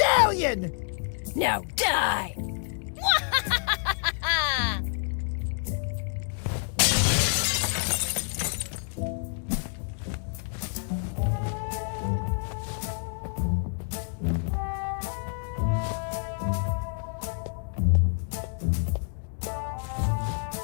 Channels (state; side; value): silent; right; 59 dB below the other